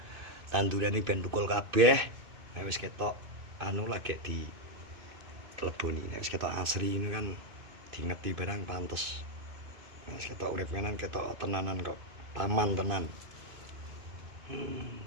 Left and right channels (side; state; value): left; late; 2.6 ms